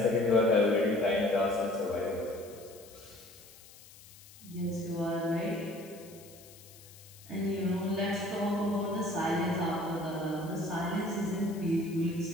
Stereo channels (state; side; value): noise; left; hiss, 21 dB below the sound